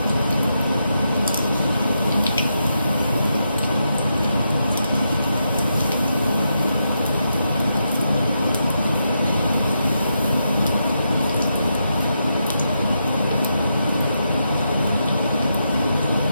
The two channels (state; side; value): inverted; both; correlation -0.83